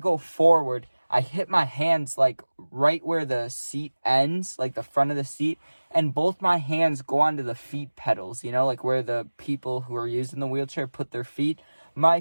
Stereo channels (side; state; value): both; inverted; correlation -1.00